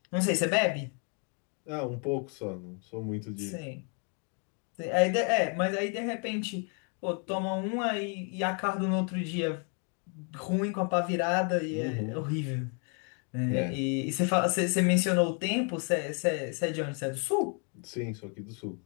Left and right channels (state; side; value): quieter; right; 39.8 dB